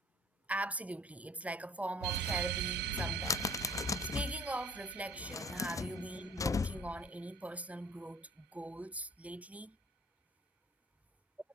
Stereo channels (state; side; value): normal; both; correlation 0.52